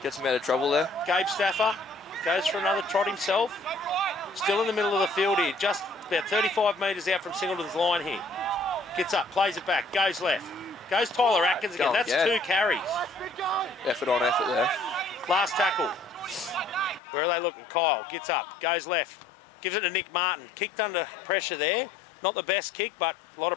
Gets him out of trouble there. Gabe Staffer goes for another trot himself. Still in the middle of the field here, just about 35 metres out from Singleton's line here. Gets up, plays it back, goes left. Goes Tyler Atkins again. That's two carries. Effort on effort there. Last tackle. Where are they looking? Kyle gets up, goes left. Gives it to Nick Martin. Kicked under pressure there. Not the best kick, but a lot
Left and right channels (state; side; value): drops out; right; at 17.0 s